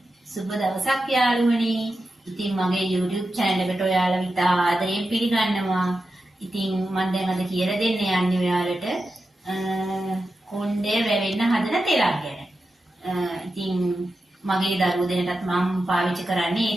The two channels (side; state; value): both; normal; correlation 0.90